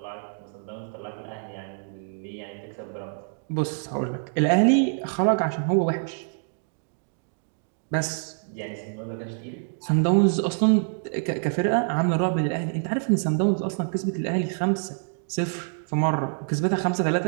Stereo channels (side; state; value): left; silent; 61 dB below the other